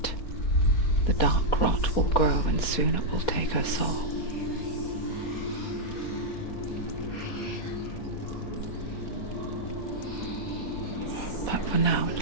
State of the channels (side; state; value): right; late; 4.2 ms